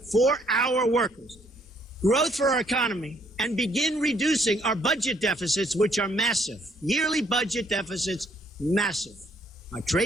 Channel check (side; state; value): both; normal; correlation 0.67